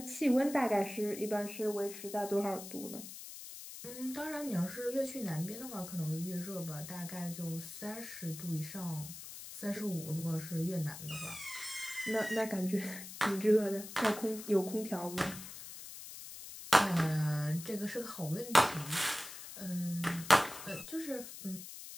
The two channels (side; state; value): left; noise; hiss, 12 dB below the sound